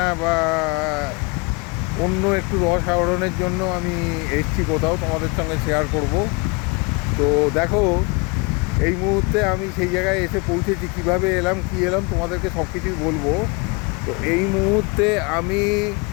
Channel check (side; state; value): right; quieter; 29.4 dB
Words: বা অন্য একটু রস আহরণের জন্য আমি এসেছি কোথাও, তোমাদের সঙ্গে শেয়ার করব। তো দেখো, এই মুহূর্তে আমি সেই জায়গায় এসে পৌঁছেছি। কিভাবে এলাম কি এলাম তোমাদেরকে সব কিছুই বলবো। তো এই মুহূর্তে আমি